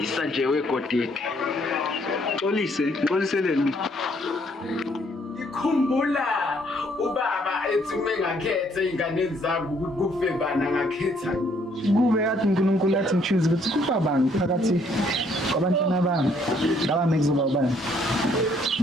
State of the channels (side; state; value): both; normal; correlation 0.66